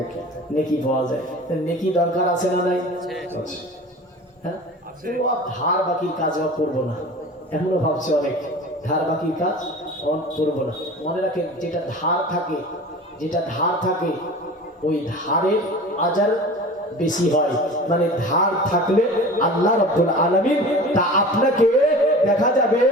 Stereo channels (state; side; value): normal; both; correlation 0.38